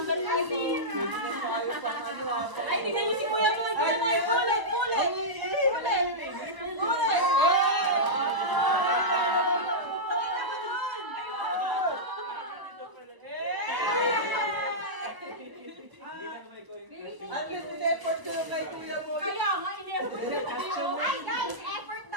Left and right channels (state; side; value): late; left; 1.0 ms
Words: 5. Tayo pa ano ah. Ay, tingnan niyo si Kuya mo. Tingnan mo yung ulit. At least in-effort ko yung kay kuya mo. Kaya nga, in-effort niya tayo. Ay, guys, effort